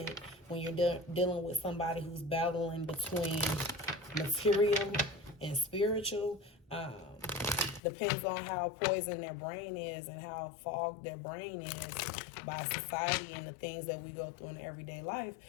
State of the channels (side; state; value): right; drops out; at 7.8 s